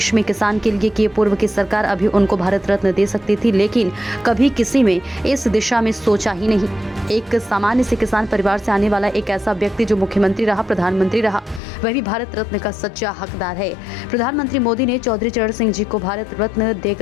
में किसान के लिए किए। पूर्व की सरकार अभी उनको भारत रत्न दे सकती थी, लेकिन कभी किसी में इस दिशा में सोचा ही नहीं। एक सामान्य से किसान परिवार से आने वाला एक ऐसा व्यक्ति जो मुख्यमंत्री रहा, प्रधानमंत्री रहा, वह भी भारत रत्न का सच्चा हकदार है। प्रधानमंत्री मोदी ने चौधरी चरण सिंह जी को भारत रत्न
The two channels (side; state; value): right; drops out; at 11.6 s